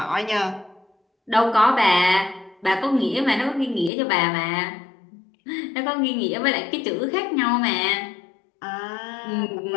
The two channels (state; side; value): drops out; right; at 3.9 s